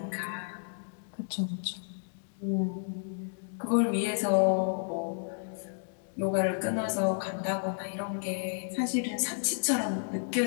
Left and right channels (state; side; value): silent; right; digital silence